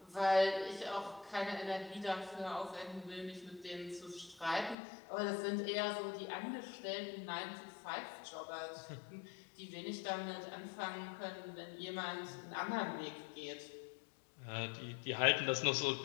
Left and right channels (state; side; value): drops out; right; at 4.8 s